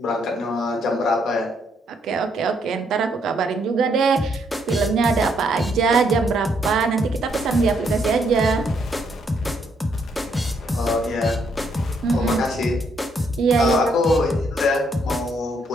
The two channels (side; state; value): both; normal; correlation 0.73